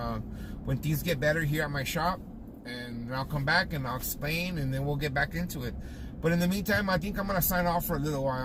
when things get better here at my shop, and I'll come back and I'll explain, and then we'll get back into it. But in the meantime, I think I'm gonna sign off for a little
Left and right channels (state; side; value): identical; both; correlation 1.00